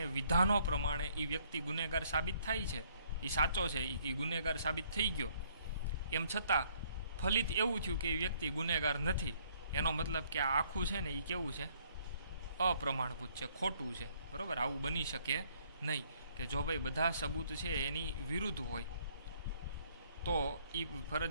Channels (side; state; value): both; inverted; correlation -0.65